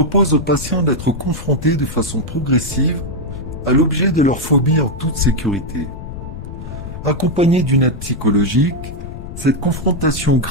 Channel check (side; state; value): left; noise; rumble, 10 dB below the sound